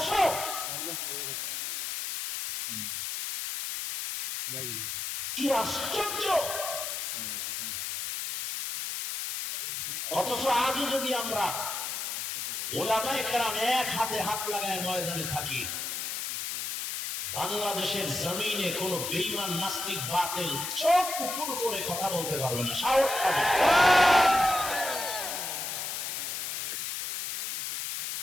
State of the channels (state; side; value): noise; left; hiss, 3 dB below the sound